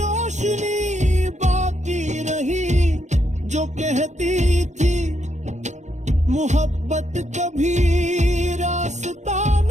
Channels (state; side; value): late; left; 0.34 ms